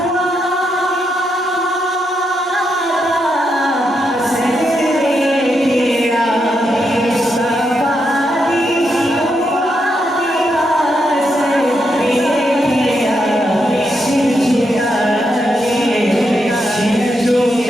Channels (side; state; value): both; normal; correlation 0.82